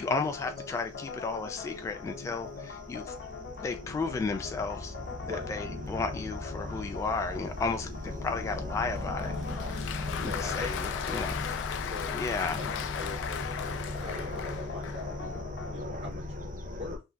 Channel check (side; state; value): right; quieter; 3.7 dB